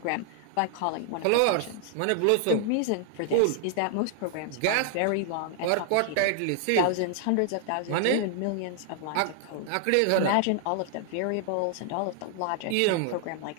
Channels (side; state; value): both; different; correlation 0.00